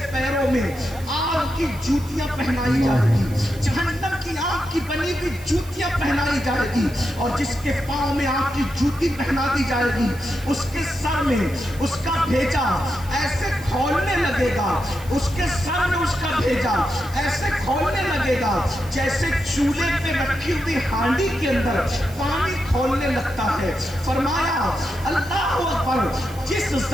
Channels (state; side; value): noise; right; hiss, 20 dB below the sound